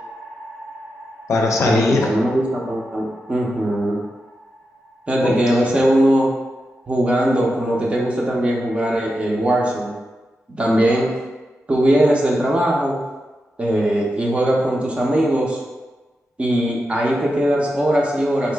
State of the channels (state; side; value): normal; both; correlation 0.88